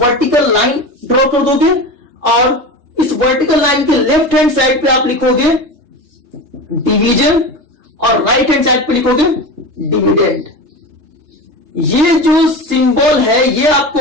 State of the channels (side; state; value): left; late; 3.3 ms